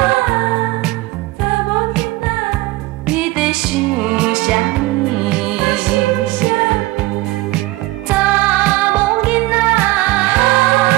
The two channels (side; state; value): left; quieter; 19.3 dB